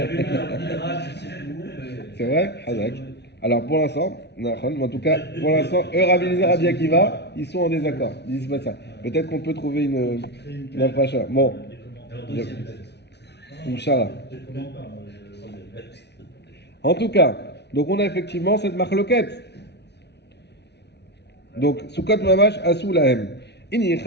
dans le Midrash, je sais plus où. C'est vrai? Hazak. Alors pour l'instant, en tout cas, pour l'instant, eux, Rabbi Eliezer, Rabbi Akiva, ils sont en désaccord. Ils disent pas ça. Peut-être qu'on peut trouver une approche. Bon, Inch'Allah. En tout cas, donc on a effectivement cette marloquette. Donc, Soukot Mamash Asou Lahem.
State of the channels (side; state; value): right; late; 0.50 ms